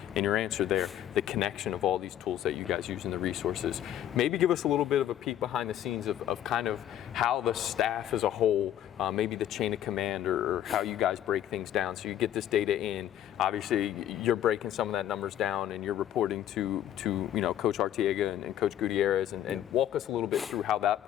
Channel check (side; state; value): right; quieter; 11.3 dB